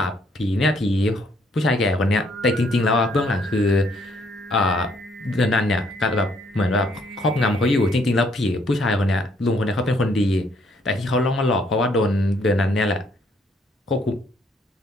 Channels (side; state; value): both; normal; correlation 0.68